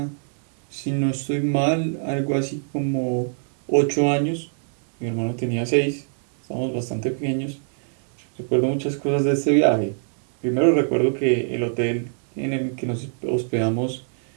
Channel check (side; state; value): left; silent; 63 dB below the other